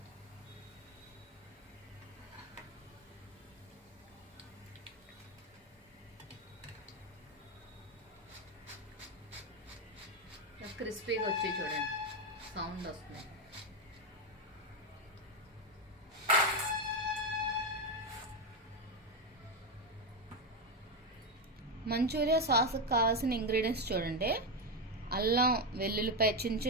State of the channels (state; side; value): normal; both; correlation 0.09